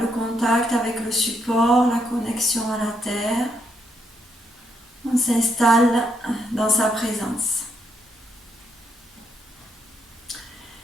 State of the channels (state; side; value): normal; both; correlation 0.76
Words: contact avec le support, la connexion à la terre. On s'installe dans sa présence.